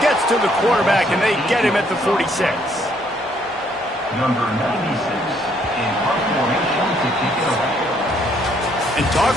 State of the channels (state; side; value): normal; both; correlation 0.68